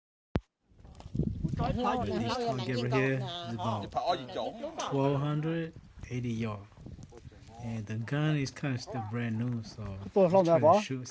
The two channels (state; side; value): identical; both; correlation 1.00